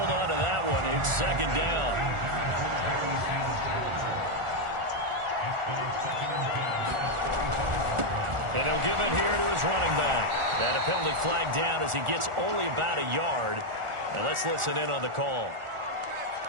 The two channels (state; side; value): late; left; 1.4 ms